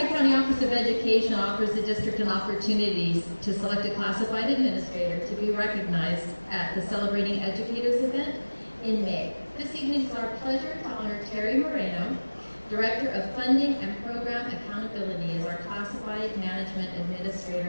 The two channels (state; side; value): inverted; both; correlation -1.00